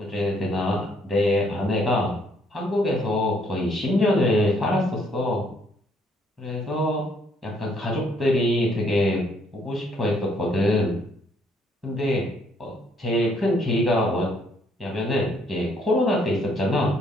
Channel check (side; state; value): both; normal; correlation 0.68